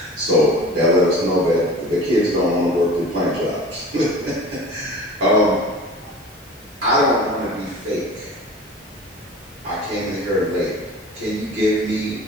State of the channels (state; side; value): normal; both; correlation 0.39